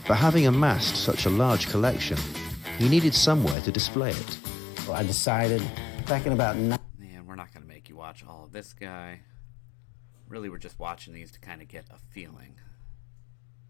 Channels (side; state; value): right; drops out; at 3.6 s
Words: But having amassed such a large collection, he needed somewhere to display it. So I decided back in about... Man, we're not going to make you watch all of this guy. Really, we're just watching these to kind of get a feeling